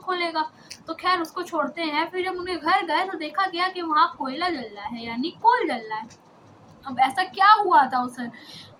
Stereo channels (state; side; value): identical; both; correlation 1.00